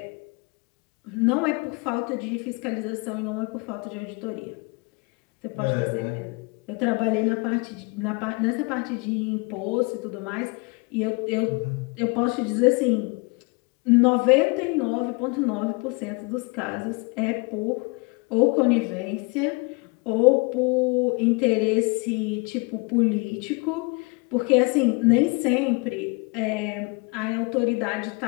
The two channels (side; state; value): right; quieter; 29.7 dB